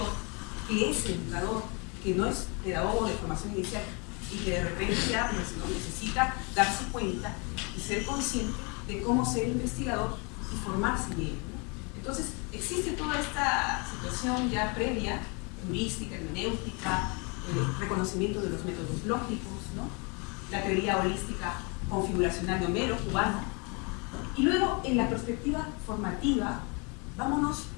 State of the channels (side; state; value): right; quieter; 32.1 dB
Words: que es educador, que no es pedagogo de formación inicial y que de repente ya pues, ¿no? necesita darse cuenta y ser consciente de cómo ser investigador y formarse en ello, ¿no? Entonces, existe toda esta situación ya previa, heurística, hermenéutica, reconocimiento de los métodos lógicos, ¿no? La teoría holística configuracional de Homero, cubano. Y luego, en la perspectiva formativa, vámonos,